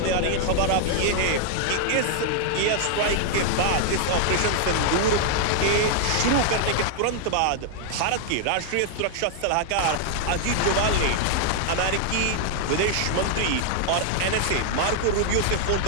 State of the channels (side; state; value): both; different; correlation 0.00